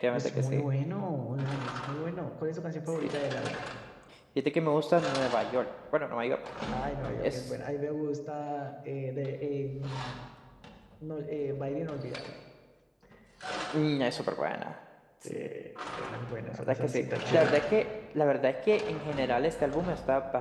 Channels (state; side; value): identical; both; correlation 1.00